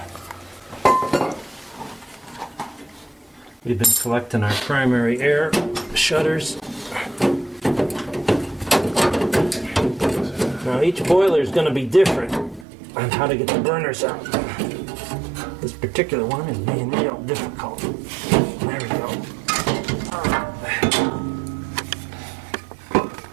We've been collecting our primary air shutters. Now each boiler is going to be different on how to get the burners out. This particular one is being real difficult. There we go.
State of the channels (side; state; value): left; drops out; at 12.7 s